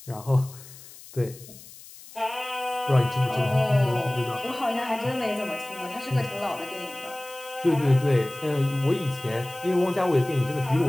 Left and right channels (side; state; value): left; noise; hiss, 18 dB below the sound